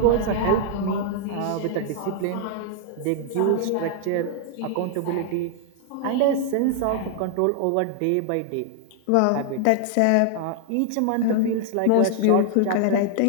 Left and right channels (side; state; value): both; different; correlation -0.01